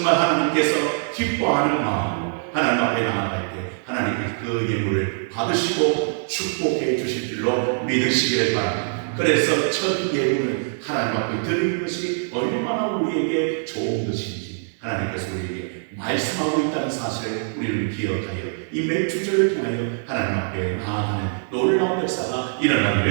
하나님께서 기뻐하는 마음, 하나님 앞에 나아갈 때 하나님께서 그 예물을 받으시고 축복해 주실 줄로 믿으시기를 바랍니다. 그래서 첫 예물은 하나님 앞에 드리는 것이 얼마나 우리에게 좋은 것인지 하나님께서 우리에게 말씀하고 있다는 사실을 우리는 기억하여 이 맥주절을 통하여 하나님 앞에 나아가는 놀라운 역사가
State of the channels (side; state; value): left; silent; 63 dB below the other